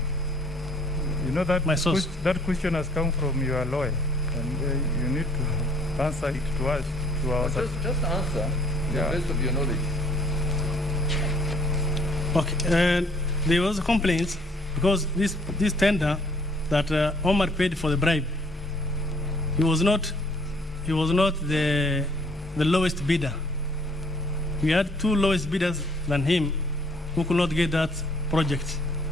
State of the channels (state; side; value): normal; both; correlation 0.60